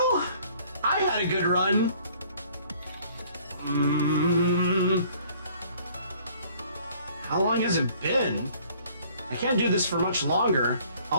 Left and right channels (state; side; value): inverted; both; correlation -0.57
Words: I had a good run. How long has it been? I can't do this for much longer.